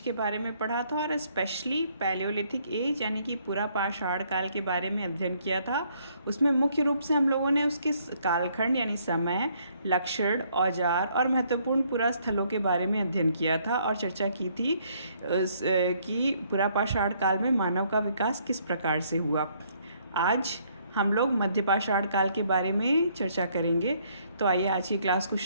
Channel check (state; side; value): inverted; both; correlation -0.67